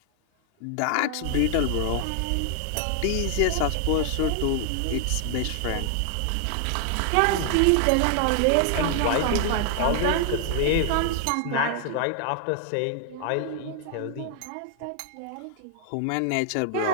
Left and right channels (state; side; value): different; both; correlation 0.00